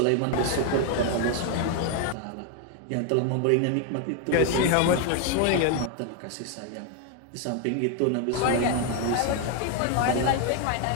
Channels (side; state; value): both; different; correlation 0.01